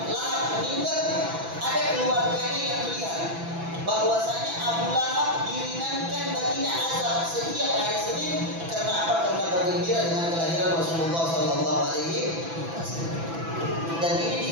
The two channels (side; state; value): left; late; 6.0 ms